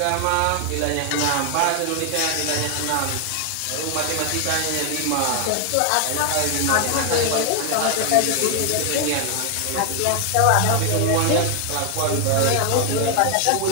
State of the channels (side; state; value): both; different; correlation 0.00